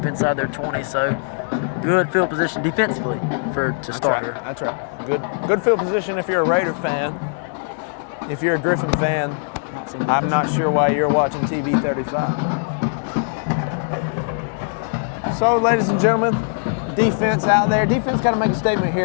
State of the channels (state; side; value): silent; right; digital silence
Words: inside their 20. So good field position defensively to start here. That's right. Good field position if you're a Raider fan. If you're a Griffin fan, I'm not sure why you're watching TV 35. So, ladies and gentlemen, defense out there. Defense got to make a statement